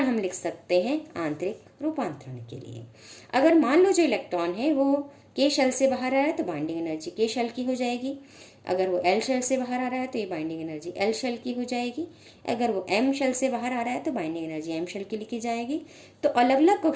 हम लिख सकते हैं आंतरिक रूपांतरण के लिए। अगर मान लो जो इलेक्ट्रॉन है वो के शेल से बाहर आ रहा है तो बाइंडिंग एनर्जी के शेल की हो जाएगी, अगर वो एल शेल से बाहर आ रहा है तो ये बाइंडिंग एनर्जी एल शेल की हो जाएगी, अगर वो एम शेल से बाहर आ रहा है तो बाइंडिंग एनर्जी एम शेल की लिखी जाएगी। तो अलग अलग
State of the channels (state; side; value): identical; both; correlation 1.00